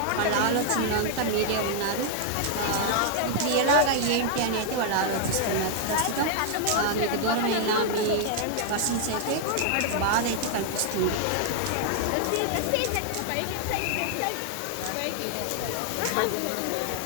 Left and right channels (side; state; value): both; different; correlation 0.00